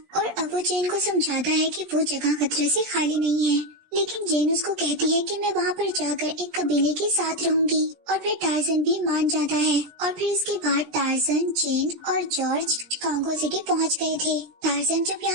और अब वो जेन को समझाता है कि वो जगह खतरे से खाली नहीं है। लेकिन जेन उसको कहती है कि मैं वहाँ पर जाकर एक कबीले के साथ रहूंगी और फिर टार्जन भी मान जाता है। और फिर इसके बाद टार्जन, जेन और जॉर्ज कॉन्गो सिटी पहुँच गए थे। टार्जन जब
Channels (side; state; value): left; late; 17 ms